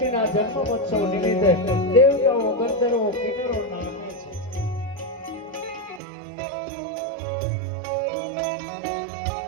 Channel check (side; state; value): left; drops out; at 6.0 s